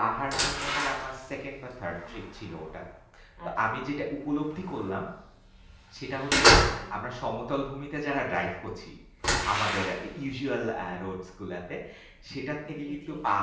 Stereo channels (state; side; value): identical; both; correlation 1.00